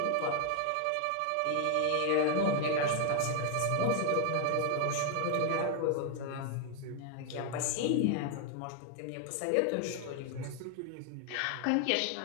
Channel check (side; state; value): both; different; correlation 0.00